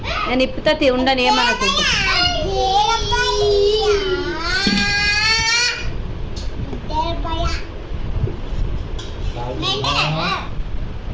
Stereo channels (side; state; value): both; identical; correlation 1.00